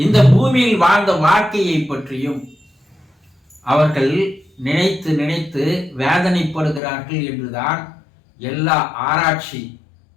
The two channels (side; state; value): right; drops out; at 6.8 s